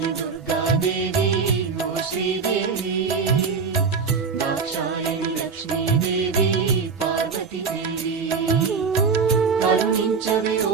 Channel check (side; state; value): left; quieter; 5.3 dB